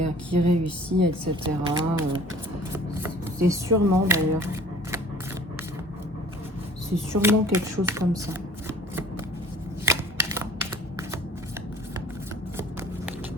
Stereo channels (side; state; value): both; normal; correlation 0.49